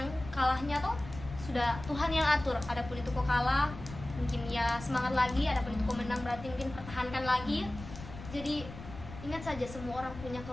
kalahnya toh sudah Tuhan yang atur. Adapun itu kau kalah mungkin ya semangat lagi, adapun itu kau menang berarti mungkin pertahankan lagi. Jadi ingat saja semua orang punya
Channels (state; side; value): noise; left; rumble, 13 dB below the sound